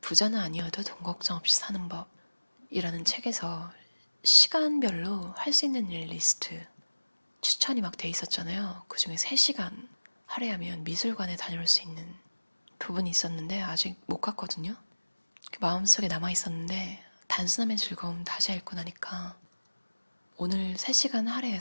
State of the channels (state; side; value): inverted; both; correlation -1.00